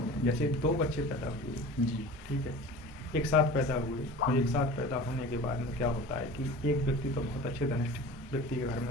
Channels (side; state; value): both; normal; correlation 0.38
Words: हैं। जैसे 2 बच्चे पैदा हुए जी, ठीक है, एक साथ पैदा हुए और एक साथ पैदा होने के बाद में क्या होता है कि एक व्यक्ति तो बहुत अच्छे धनिष्ठ व्यक्ति के घर